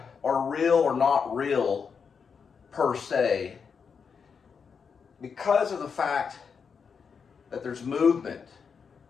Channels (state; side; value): quieter; right; 6.1 dB